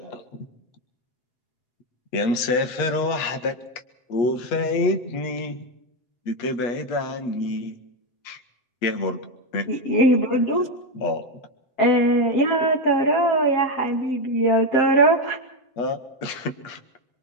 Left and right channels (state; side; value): late; right; 8.4 ms